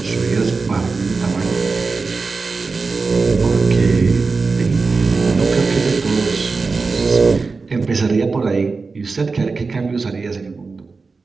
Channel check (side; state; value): left; quieter; 4.3 dB